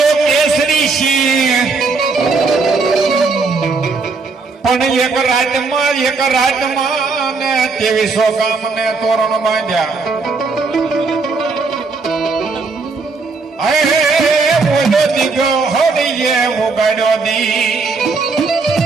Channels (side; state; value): left; quieter; 4.2 dB